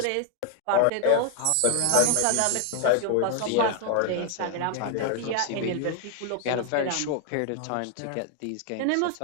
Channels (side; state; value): both; different; correlation 0.00